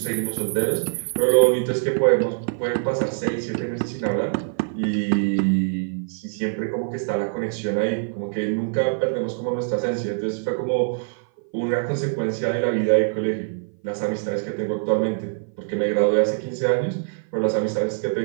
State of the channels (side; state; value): left; silent; 57 dB below the other